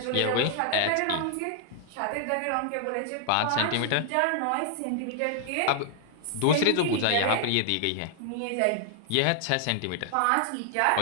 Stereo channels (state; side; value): different; both; correlation 0.00